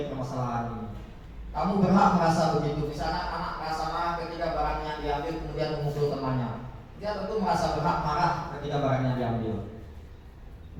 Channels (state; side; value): identical; both; correlation 1.00